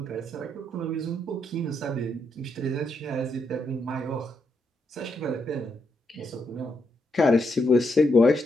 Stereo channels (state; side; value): normal; both; correlation 0.79